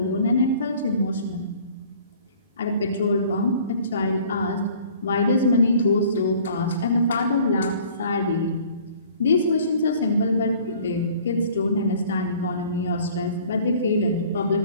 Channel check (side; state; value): both; inverted; correlation -0.52